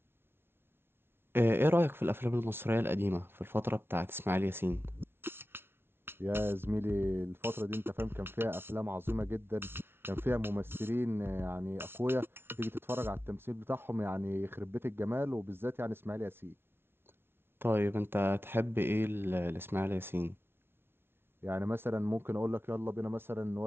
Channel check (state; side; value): late; left; 0.11 ms